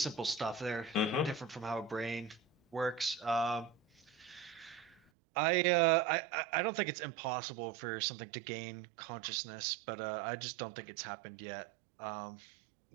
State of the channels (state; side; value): drops out; left; at 5.0 s